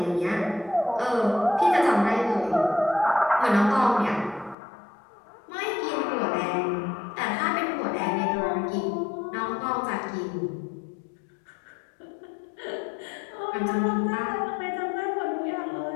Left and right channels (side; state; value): right; drops out; at 4.5 s